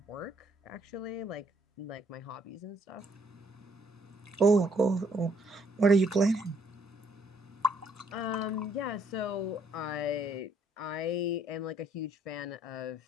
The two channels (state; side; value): normal; both; correlation 0.67